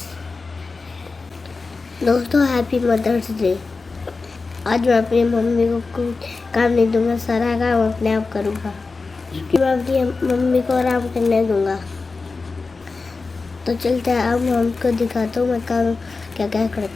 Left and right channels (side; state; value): right; quieter; 4.1 dB